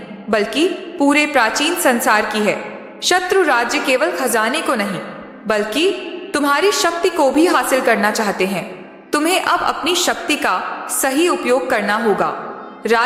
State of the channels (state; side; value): identical; both; correlation 1.00